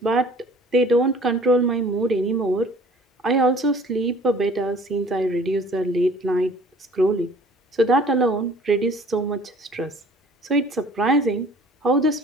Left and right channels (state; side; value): normal; both; correlation 0.51